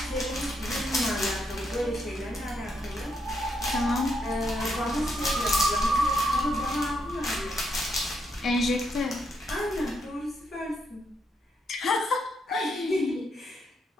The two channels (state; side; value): normal; both; correlation 0.78